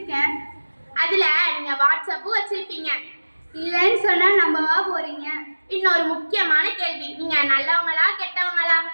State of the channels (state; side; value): inverted; both; correlation -1.00